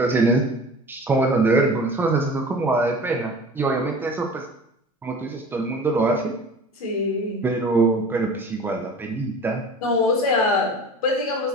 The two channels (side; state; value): both; normal; correlation 0.40